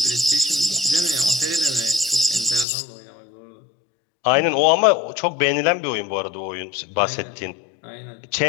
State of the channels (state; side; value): drops out; right; at 2.7 s